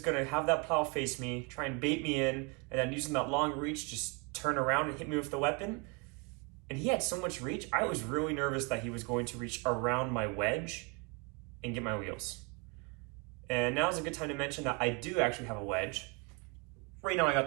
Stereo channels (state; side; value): quieter; left; 31.3 dB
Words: have that plow face me, try and bait me in, and then using that long reach, just turn around and hit me with the weapon. And he had so much reach, I was really nervous that he was going to reach around my wedge and get my wheels. And now is a good time to mention that I do actually have a wedge. Right now I got